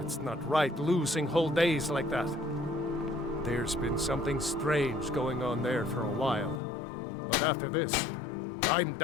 not right, losing whole days like that. There's been something strange going on there for a while. But after this, I'm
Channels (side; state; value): right; drops out; at 6.6 s